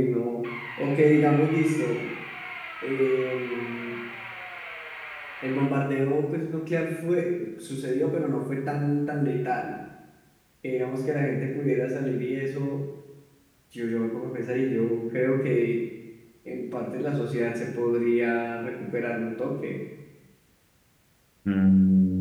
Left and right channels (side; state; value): both; identical; correlation 1.00